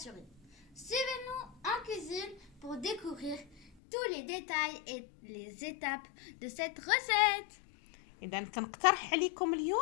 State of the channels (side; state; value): right; drops out; at 3.7 s